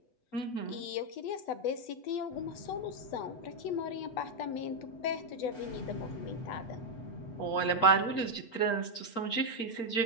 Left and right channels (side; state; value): right; late; 8.2 ms